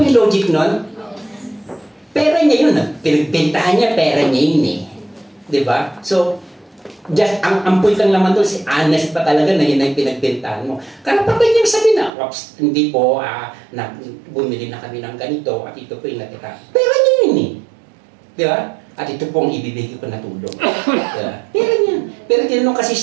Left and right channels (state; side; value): drops out; left; at 12.1 s